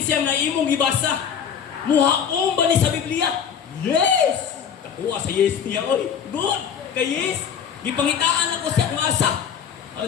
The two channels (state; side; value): quieter; right; 7.7 dB